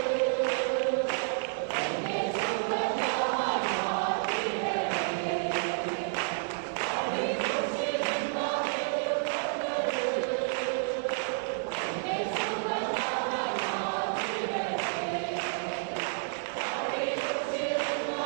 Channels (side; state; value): left; silent; digital silence